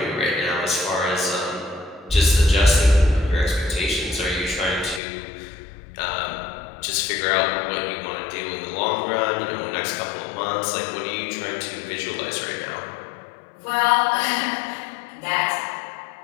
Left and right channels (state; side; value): drops out; right; at 5.0 s